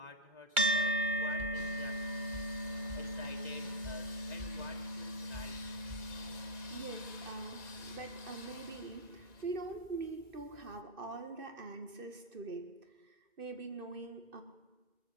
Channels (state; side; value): late; left; 1.9 ms